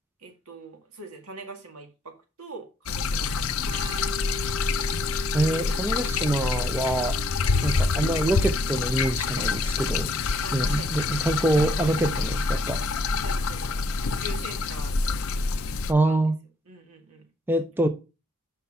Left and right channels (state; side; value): normal; both; correlation 0.70